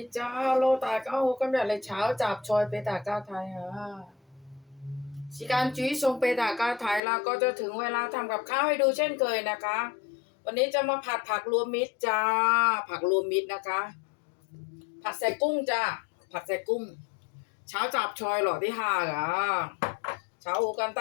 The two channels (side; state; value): right; drops out; at 7.0 s